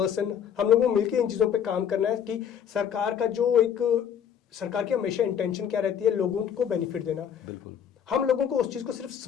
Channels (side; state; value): right; quieter; 8.5 dB